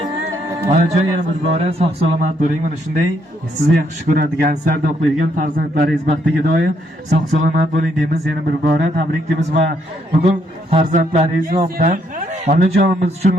Onajon, yana bir bora sog' salomat bo'ling. Mana shunday sizni yaxshi ko'radigan, sarda o'qiydigan farzandlaringiz baxtiga doim sog' salomat bo'ling deymiz. Yana bir bora tabriklaymiz va bugun farzandlaringiz nomidan onajonimiz uchun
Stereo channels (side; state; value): both; normal; correlation 0.73